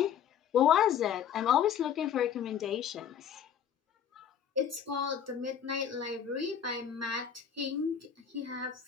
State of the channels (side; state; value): right; quieter; 8.5 dB